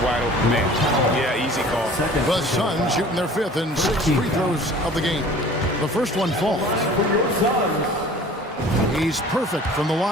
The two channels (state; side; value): normal; both; correlation 0.46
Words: wide open man. Yeah, easy call. The Suns shooting their 5th and 6th free throws of the game. The first one falls. He's perfect from the